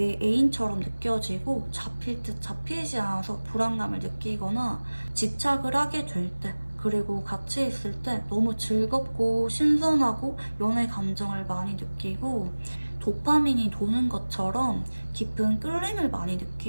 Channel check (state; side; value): inverted; both; correlation -1.00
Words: 애인처럼 느껴지고 잡힐 듯 잡히지 않아서 불안감을 느끼거나 집착을 하게 될 때, 그리고 같이 있을 때 너무 즐겁고 신선하고 연애 감정을 많이 느끼고 도파민이 도는 것처럼 깊은 끌림을 많이